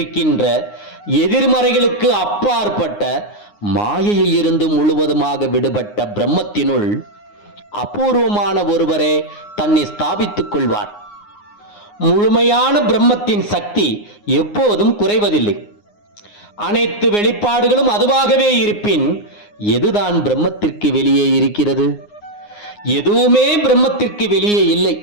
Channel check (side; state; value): right; late; 9.7 ms